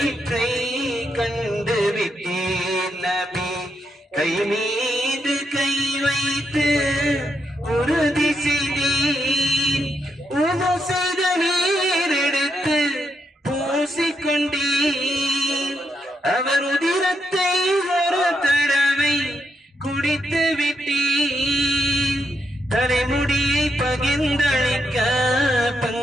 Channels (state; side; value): normal; both; correlation 0.81